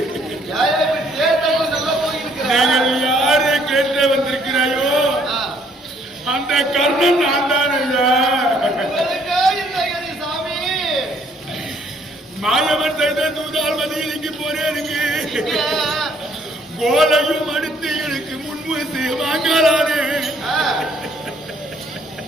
நீங்கள் யாரை கேட்டு வந்திருக்கிறாயோ அந்த கர்ணன் நான் தான் ஐயா. மாயவன் செய்த தூதால் மதியில் இங்கு போறேனுங்க. கோலையும் அடுத்து எனக்கு முன்வந்து வாங்கலானே.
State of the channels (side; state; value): both; normal; correlation 0.65